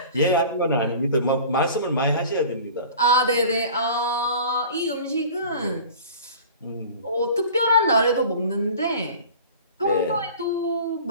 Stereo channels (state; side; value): inverted; both; correlation -0.42